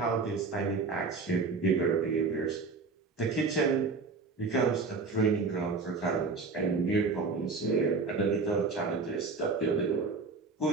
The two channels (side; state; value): left; quieter; 4.2 dB